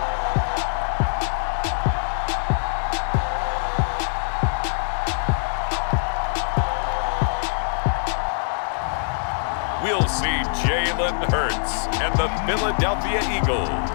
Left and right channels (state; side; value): silent; right; digital silence